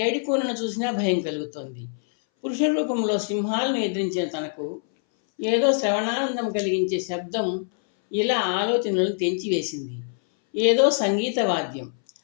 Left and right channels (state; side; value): silent; right; 61 dB below the other